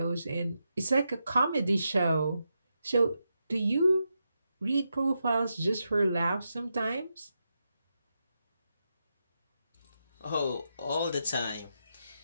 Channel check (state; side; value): inverted; both; correlation -0.86